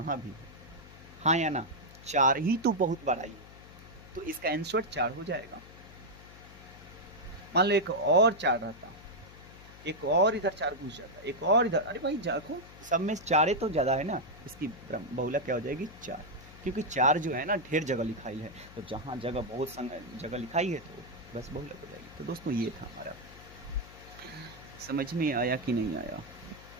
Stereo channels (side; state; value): left; noise; hum, 19 dB below the sound